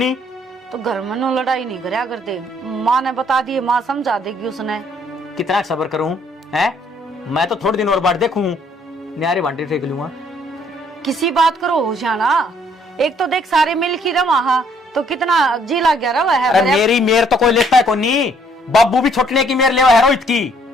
तो घर में नो लड़ाई नहीं करया करते। माँ ने बता दिए, माँ समझा देगी उसने। कितना सब्र करूं है? मैं तो थोड़े दिन और बार देखूं, न्यारे बांटे फेंक लूंगा। किसी बात करो होशियाना। एक तो देख सारे मिल की रवा, तो कितना जी लग गया रवा है। अरे मेरी मेर तो कोई लेता है कोनी। बाबू भी छोटने की मेर लेवा है रोहित की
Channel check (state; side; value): normal; both; correlation 0.64